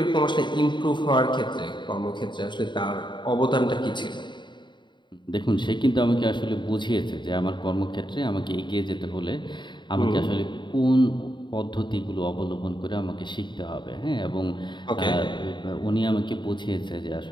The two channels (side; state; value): right; late; 0.23 ms